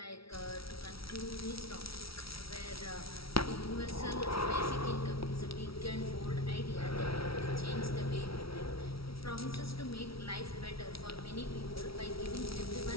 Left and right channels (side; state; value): right; late; 0.75 ms